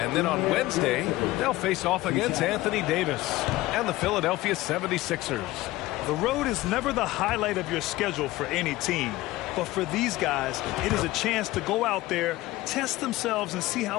then on Wednesday, they'll face off against Anthony Davis and the Philadelphia 76ers. The road is never the highlight of your schedule for any team. But for these guys, it is a chance to go out there, test themselves, and see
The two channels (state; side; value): quieter; right; 17.9 dB